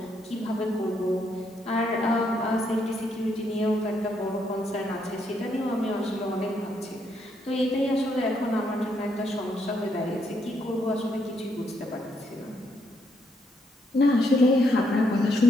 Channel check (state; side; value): normal; both; correlation 0.76